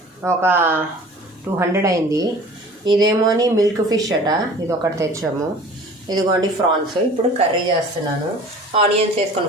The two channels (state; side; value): normal; both; correlation 0.44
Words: ఒక 200 అయింది. ఇదేమోని మిల్క్ ఫిష్ అట, ఇది ఒకటి తెచ్చాము. ఇదిగోండి ఫ్రాన్స్. ఇప్పుడు కర్రీ చేస్తున్నాను. ఆనియన్స్